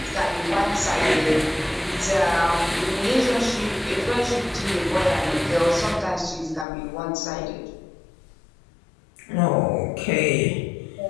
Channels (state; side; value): drops out; right; at 6.7 s